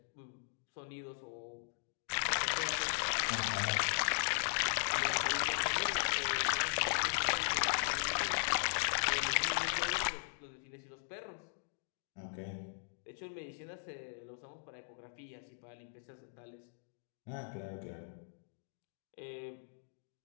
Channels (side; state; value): right; silent; digital silence